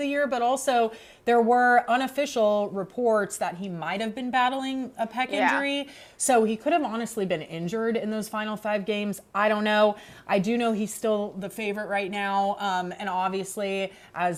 year, but also there were unofficial reports that he might have been battling a pec injury. So he could have honestly been injured in those final 5 games. I don't know. I do know he's still the favorite right now. And obviously,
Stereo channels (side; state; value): both; identical; correlation 1.00